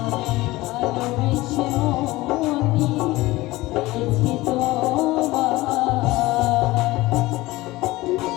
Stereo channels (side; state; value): right; quieter; 19.2 dB